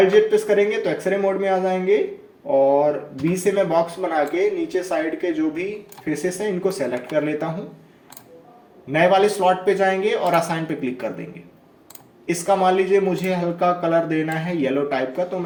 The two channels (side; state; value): both; identical; correlation 1.00